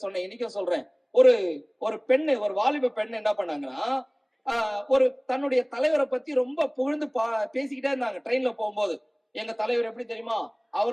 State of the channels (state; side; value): identical; both; correlation 1.00